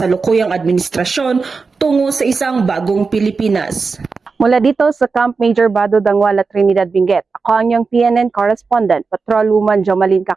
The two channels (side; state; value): left; quieter; 4.6 dB